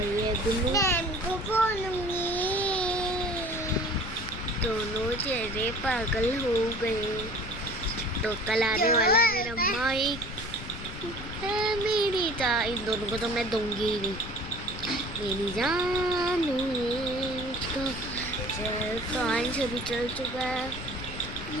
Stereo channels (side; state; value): left; noise; rumble, 10 dB below the sound